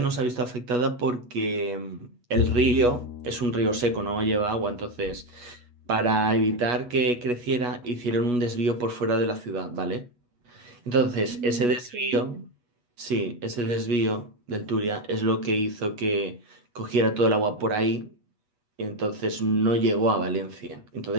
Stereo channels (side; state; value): left; late; 8.2 ms